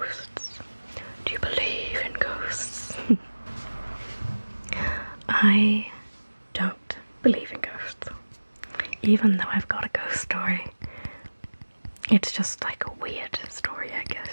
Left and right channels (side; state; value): both; inverted; correlation -1.00